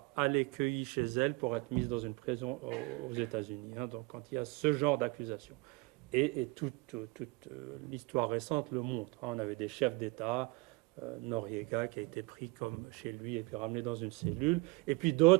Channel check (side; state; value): left; quieter; 25.3 dB